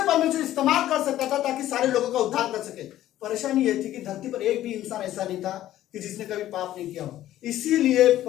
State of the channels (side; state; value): right; quieter; 13.4 dB